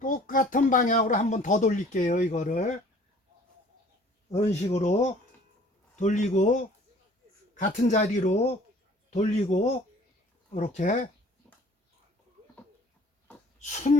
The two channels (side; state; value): both; normal; correlation 0.52